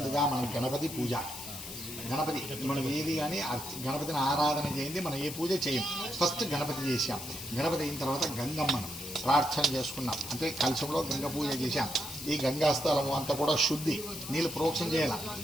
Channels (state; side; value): noise; left; hiss, 9 dB below the sound